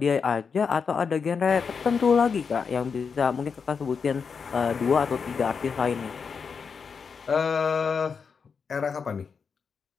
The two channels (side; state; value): right; quieter; 5.8 dB